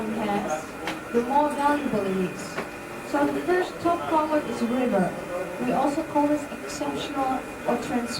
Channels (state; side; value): identical; both; correlation 1.00